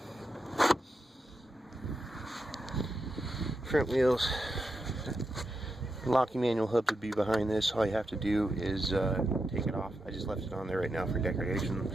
Front wheels. Locking manual hub would be behind this. All you have to do is take it off. I just left it on there right now for decoration.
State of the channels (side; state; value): both; normal; correlation 0.86